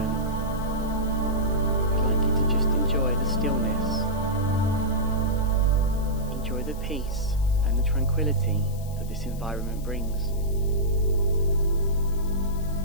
I'd like you to just enjoy the stillness, enjoy the peace and the tranquility that this environment brings.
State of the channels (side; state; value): left; noise; hiss, 20 dB below the sound